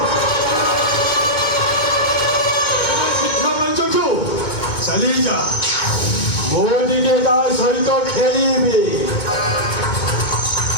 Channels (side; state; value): right; late; 2.1 ms